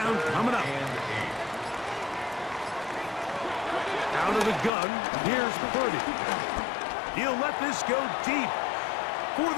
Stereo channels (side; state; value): right; drops out; at 4.7 s